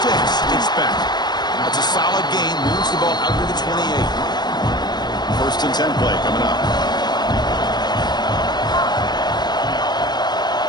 It's back. That's a solid gain. Moves the ball out to the 28. 1st and 10 play coming up.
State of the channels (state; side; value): late; right; 0.20 ms